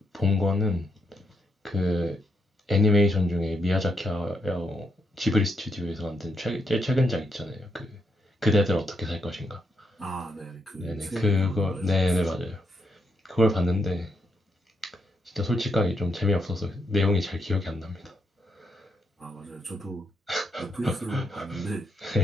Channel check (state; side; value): normal; both; correlation 0.79